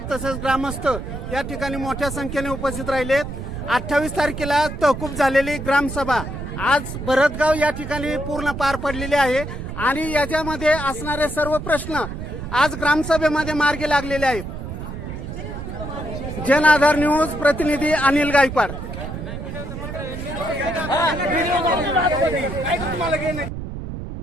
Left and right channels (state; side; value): noise; right; rumble, 7 dB below the sound